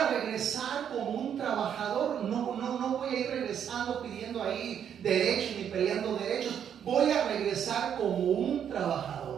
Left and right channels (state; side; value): quieter; left; 8.7 dB